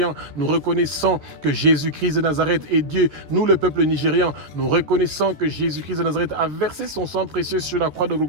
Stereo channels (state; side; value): late; left; 13 ms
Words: nous reconnaissons que Jésus-Christ de Nazareth est Dieu. Nous, le peuple nigérian, nous reconnaissons que Jésus-Christ de Nazareth a versé son sang précieux sur la croix de